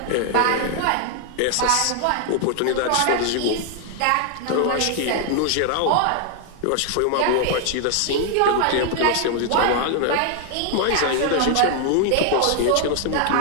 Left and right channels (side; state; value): both; different; correlation 0.00